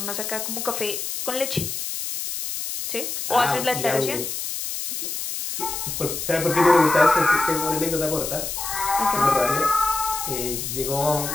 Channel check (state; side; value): noise; left; hiss, 5 dB below the sound